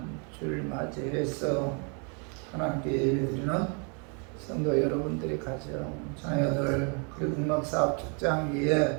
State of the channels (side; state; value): left; quieter; 37.6 dB